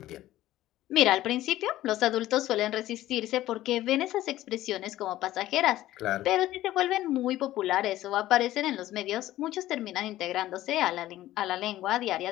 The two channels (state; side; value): quieter; right; 14.8 dB